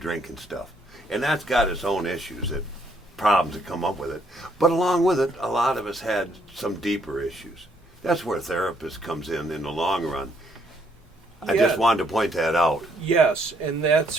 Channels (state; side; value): normal; both; correlation 0.70